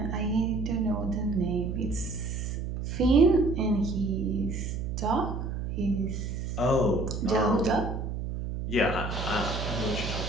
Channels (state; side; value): noise; right; hum, 4 dB below the sound